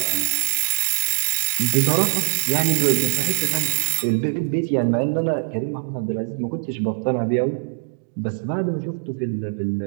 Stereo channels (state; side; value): silent; left; digital silence